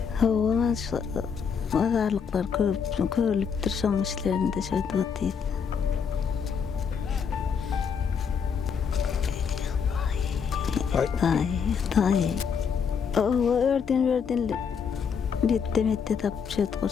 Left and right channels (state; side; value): quieter; right; 6.5 dB